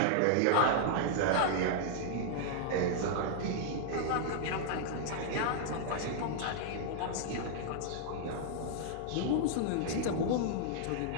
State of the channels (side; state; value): both; different; correlation -0.01